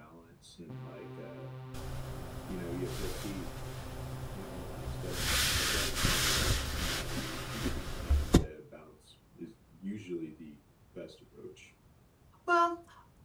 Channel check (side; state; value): both; identical; correlation 1.00